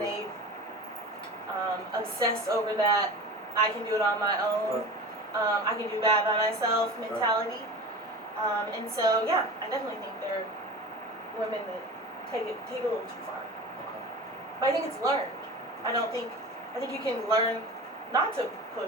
they obsessed over that. I can do it on my own. I can do bad by myself mentality. And so, yeah, I definitely think there are women that take it a little too far. But I think it's learned. I think you can learn not to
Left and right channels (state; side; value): normal; both; correlation 0.34